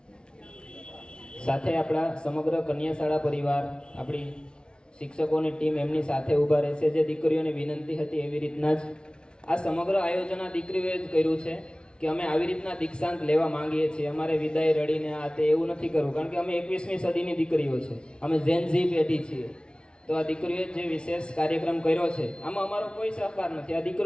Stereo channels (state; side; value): late; right; 0.055 ms